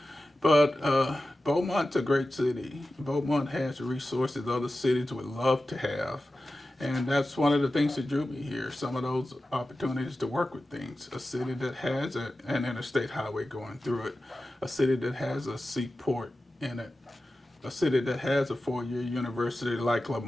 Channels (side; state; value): both; normal; correlation 0.94